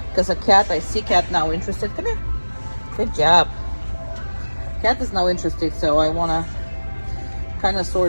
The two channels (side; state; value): both; inverted; correlation -1.00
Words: Because a cat, I see cat now interested. Come here. Good job. Cat is now interested, so I wanna kind of